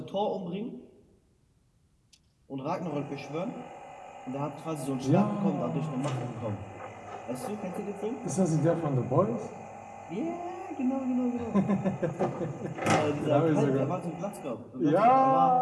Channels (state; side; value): identical; both; correlation 1.00